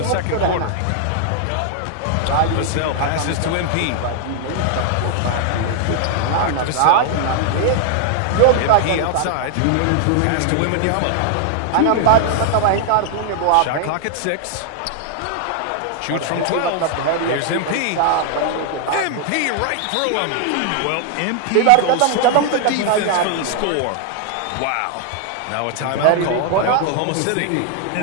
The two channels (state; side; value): different; both; correlation 0.00